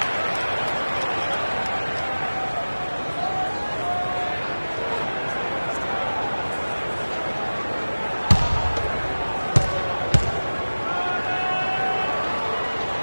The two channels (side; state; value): both; inverted; correlation -1.00